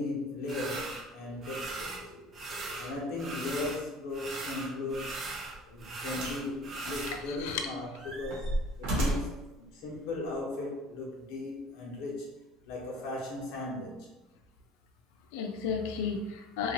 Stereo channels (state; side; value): normal; both; correlation 0.46